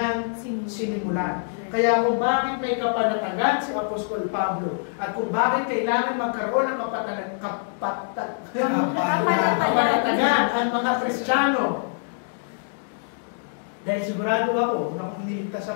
sinimulan. Kaya kung bakit may kapanatagan si Apostol Pablo at kung bakit kailangan magkaroon ng kapanatagan ang mga Kristiyano, dahil sigurado ako na kung iniligtas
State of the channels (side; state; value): right; silent; digital silence